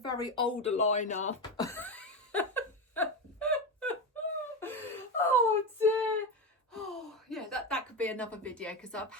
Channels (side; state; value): both; normal; correlation 0.15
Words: old aligner. Oh dear. Oh yeah, that could be another video because I've